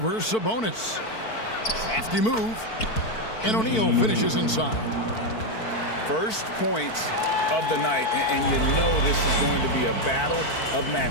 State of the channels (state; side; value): late; right; 4.5 ms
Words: Sabonis. Crafty move. And O'Neal finishes inside. First points of the night, and you know this is going to be a battle of